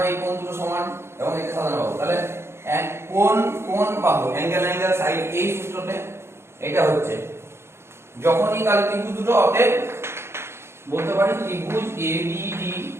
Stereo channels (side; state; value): left; late; 0.12 ms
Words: এই কোণ দুটো সমান এবং এটা সাধারণ বাহু। তাহলে কোণ কোণ বাহু, অ্যাঙ্গেল অ্যাঙ্গেল সাইড, এই সূত্রতে এটা হচ্ছে যখনই তাহলে ত্রিভুজ দুটো, অতএব বলতে পারি ত্রিভুজ এবিডি